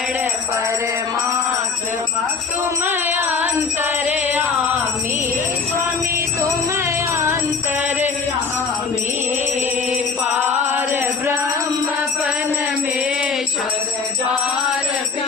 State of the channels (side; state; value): right; quieter; 5.1 dB